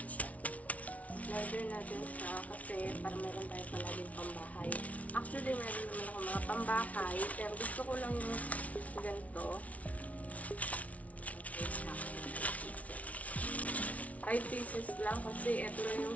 siya. In-order natin siya kasi para meron tayo palaging pambahay. Actually, meron naman ako mga pambahay, pero gusto ko lang yung ganito. Okay, 5 pieces lang kasi ito lang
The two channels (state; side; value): late; right; 0.068 ms